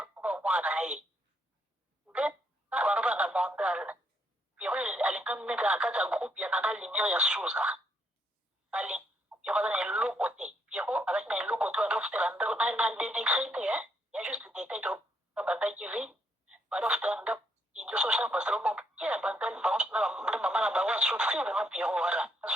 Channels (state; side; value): normal; both; correlation 0.74